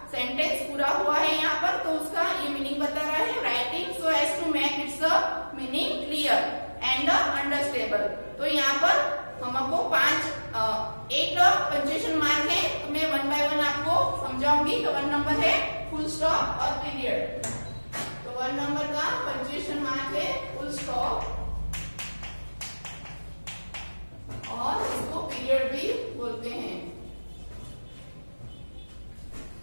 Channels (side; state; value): both; inverted; correlation -1.00